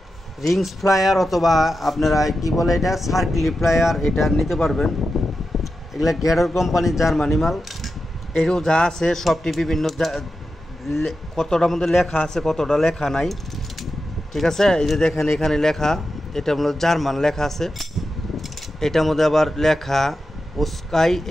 রিংস ফ্লায়ার অথবা আপনারা কি বলে এটা সার্কেল ফ্লায়ার, এটা নিতে পারবেন। এগুলা গ্যাডর কোম্পানির জার্মানি মাল। এরও যা আছে সবটি বিভিন্ন, কতটার মধ্যে লেখা আছে কতটা লেখা নাই। ঠিক আছে, এই যে দেখেন এখানে লেখা, এটা হলো জার্মান লেখা আছে, এটার মধ্যে আবার লেখা ওস্কাই,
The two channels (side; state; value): both; normal; correlation 0.90